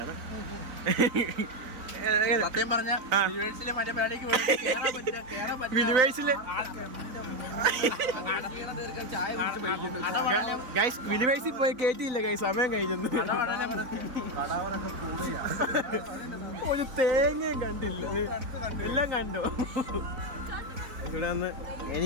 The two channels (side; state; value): left; late; 4.0 ms